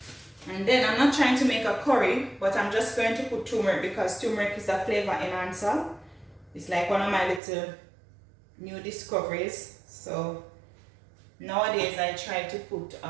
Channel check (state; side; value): drops out; left; at 7.4 s